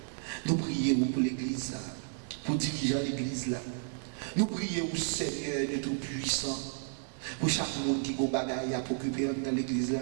Nous prions pour l'Église, pour diriger l'Église là. Nous prions, Seigneur de Tout-Puissant, pour chaque monde qui a des bagailles à occuper dans l'Église là.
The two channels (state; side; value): silent; left; 56 dB below the other